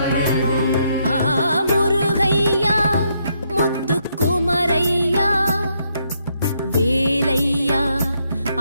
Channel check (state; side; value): inverted; both; correlation -0.76